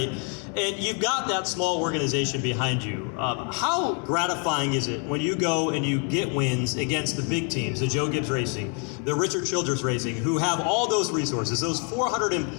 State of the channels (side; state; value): right; quieter; 38.1 dB